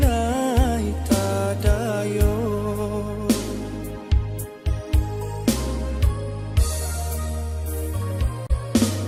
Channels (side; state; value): both; identical; correlation 1.00